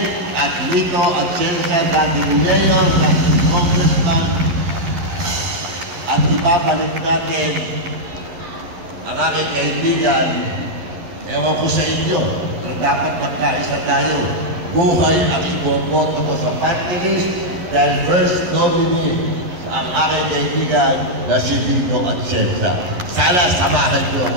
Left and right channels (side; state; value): left; late; 11 ms